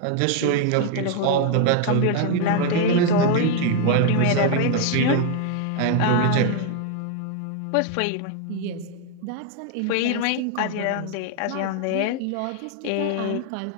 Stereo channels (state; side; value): different; both; correlation 0.01